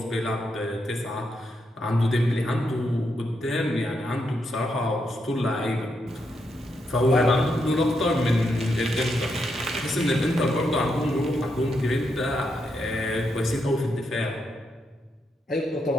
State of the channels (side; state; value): both; normal; correlation 0.81